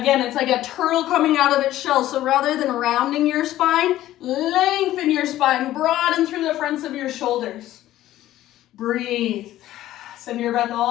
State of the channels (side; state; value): right; quieter; 14.2 dB